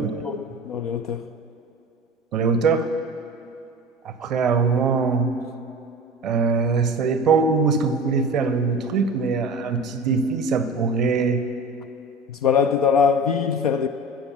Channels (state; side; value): normal; both; correlation 0.34